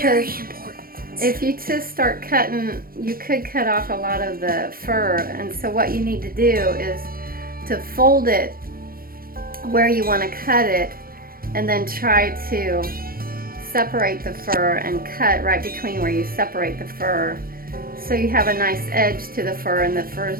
if you just start cutting, you could cut off a lot of the fur. And so what you need to do is to fold it where you want to cut it, and then try to separate the fur and cut right between where you separate the fur, so you have a nice edge to the fur and the fur is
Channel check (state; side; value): late; left; 0.42 ms